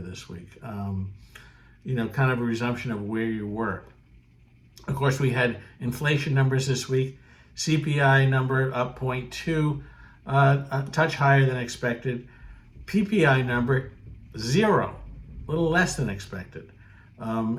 week. Kind of a resumption of where you were. Of course, we had inflation numbers this week. CPI number up 0.2, a touch higher than expected. PPI number 0, a little less than expected.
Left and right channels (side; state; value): both; identical; correlation 1.00